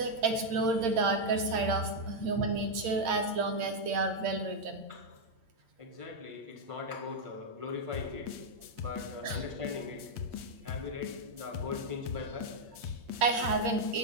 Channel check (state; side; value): late; left; 8.7 ms